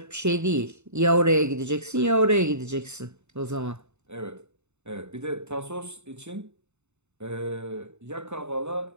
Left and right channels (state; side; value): late; left; 0.82 ms